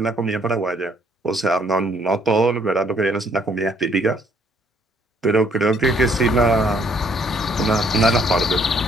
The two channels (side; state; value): both; normal; correlation 0.65